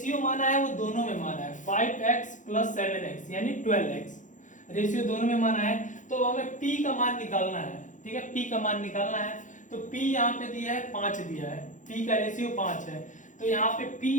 माना है वो दोनों में माना है, 5x + 7x यानी 12x, रेशियो दोनों में माना है। तो हमें p का मान निकालना है, ठीक है, p का मान निकालना है। तो p यहाँ पे दिया है 5 दिया है, p का रेशियो 5 है, तो यहाँ पे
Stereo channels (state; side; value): late; right; 0.37 ms